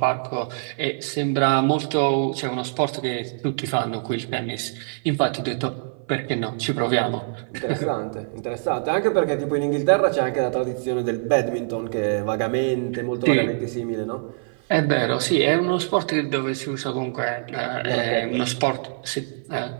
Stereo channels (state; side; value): silent; left; 55 dB below the other